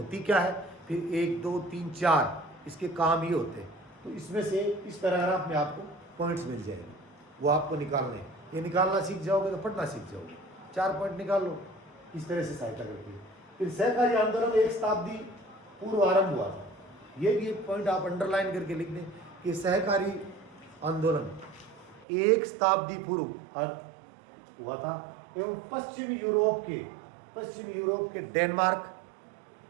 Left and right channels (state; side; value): drops out; left; at 22.1 s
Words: क्या है, फिर 1 2 3 4 इसके काम ही होते हैं। तो इसमें से इस पैराग्राफ में आपको पॉइंट्स मिल जाएंगे, वो आपको निकालने हैं। ये निकालना सीख जाओगे तो पढ़ना सीख जाओगे। 4 पॉइंट निकाल लो, इस तरह से सहायता करती है। फिर सहकारी आंदोलन 1 शताब्दी पूर्व आरंभ हुआ था। ये भी एक पॉइंट आप अंडरलाइन करके लिख दें कि सहकारी आंदोलन 1 शताब्दी पूर्व हुआ था, एवं पश्चिमी यूरोप के डेनमार्क,